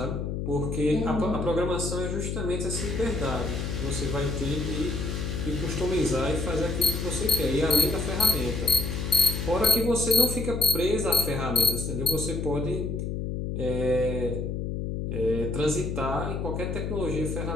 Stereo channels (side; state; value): left; noise; hum, 3 dB below the sound